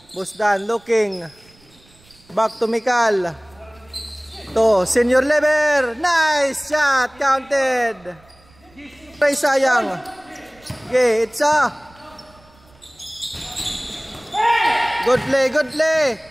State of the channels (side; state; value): right; noise; rumble, 29 dB below the sound